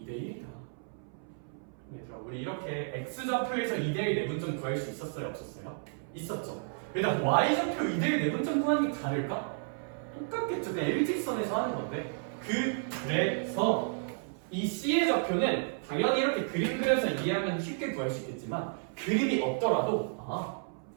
얘들아, 우리 이렇게 X좌표에서 2대1 내분점 구할 수 있었어요? 없었어요? 있었죠. 일단 Y좌표 2대1 내분점 구하는 게 다를까? 똑같겠죠. 그냥 일직선에서 하는 건데. 그래서 이 C의 좌표는 당연히 이렇게 그림 그려서 이해하면 쉽게 구할 수 있겠지만 그림이 없더라도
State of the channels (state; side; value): silent; left; 56 dB below the other